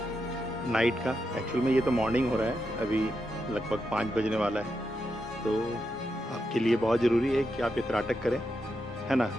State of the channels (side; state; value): both; normal; correlation 0.85